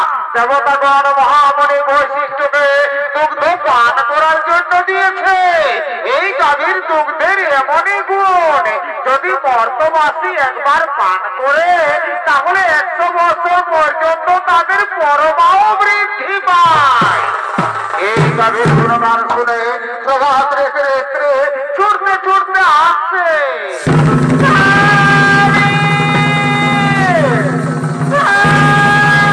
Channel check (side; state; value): both; identical; correlation 1.00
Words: দেবতাগণ মহামণি বৈশিষ্ট্যকে দুগ্ধ পান করার জন্য দিয়েছে। এই গাভীর দুগ্ধের এমনই গুণ, যদি মর্তবাসী একবার পান করে তাহলে 100 বছর পর্যন্ত তাদের পরমাও বৃদ্ধি পায়। এই গাভীর গুণগান শুনে প্রভাত রেখে রেখে ছুটতে ছুটতে আসছে।